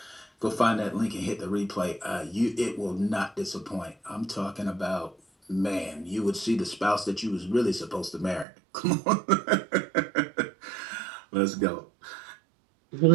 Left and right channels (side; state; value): left; drops out; at 8.5 s